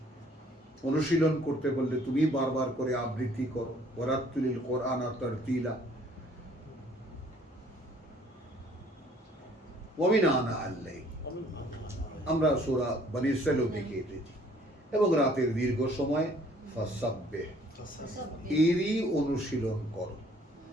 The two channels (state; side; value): normal; both; correlation 0.59